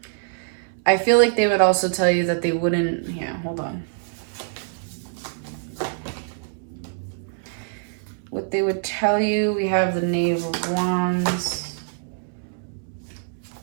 I feel like they would also tell you that they wouldn't... Yeah, hold on. What they would tell you, we have the Knave of Wands.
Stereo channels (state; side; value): silent; left; 62 dB below the other